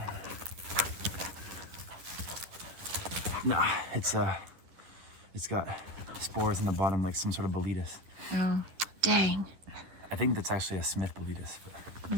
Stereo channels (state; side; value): late; left; 10 ms